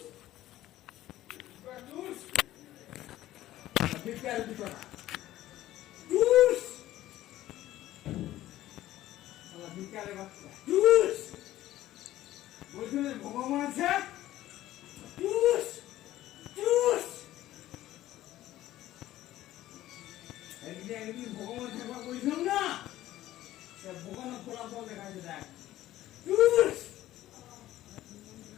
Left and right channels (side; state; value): right; quieter; 14.5 dB